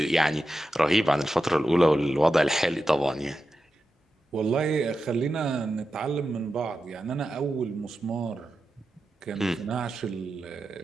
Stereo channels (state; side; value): normal; both; correlation 0.91